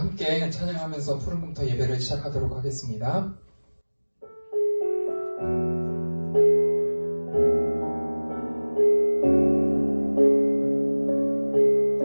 찬양하면서 푸른공터 예배를 시작하도록 하겠습니다.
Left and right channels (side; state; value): both; inverted; correlation -1.00